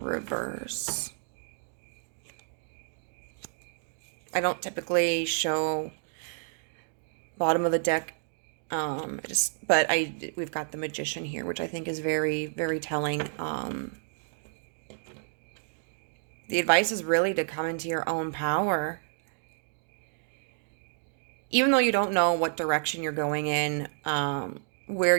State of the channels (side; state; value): left; silent; digital silence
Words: I don't typically show bottom of the deck, but we've got the Magician here, which I think is very, very telling. The advice is really to come into your own power. Even though you don't know what direction you're going in, where